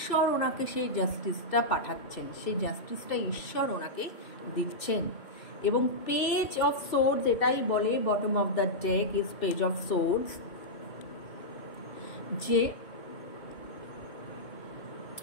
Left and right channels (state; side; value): late; right; 2.6 ms